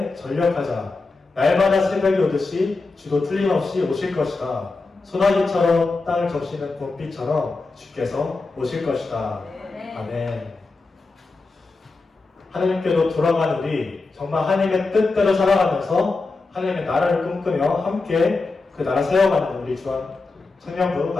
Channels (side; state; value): right; quieter; 3.7 dB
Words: 전력하자. 날마다 새벽이 오듯이 주도 틀림없이 오실 것이다. 소나기처럼 땅을 적시는 봄비처럼 주께서 오실 것이다. 아멘. 하나님께로 돌아가는 우리 정말 하나님의 뜻대로 살아가면서 하나님의 나라를 꿈꾸며 함께 그 나라 세워가는 우리 주한